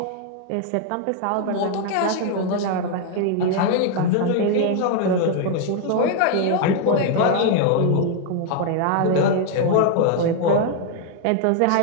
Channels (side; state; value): both; different; correlation 0.00